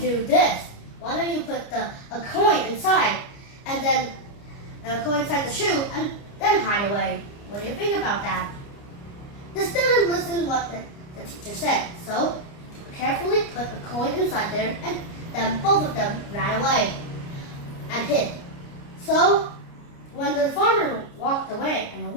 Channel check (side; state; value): right; late; 29 ms